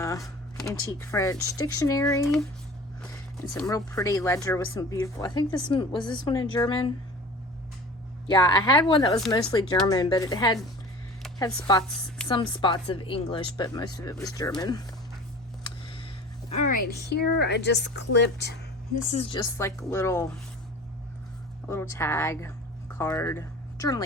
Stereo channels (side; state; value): both; normal; correlation 0.40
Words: antique French dictionary, and some real pretty ledger with some beautiful, I think this one, was this one in German? Yeah, I had one that was mostly German, but it had some spots of English, but most of it was German. All right, here I just clipped, this is just like a little tag card,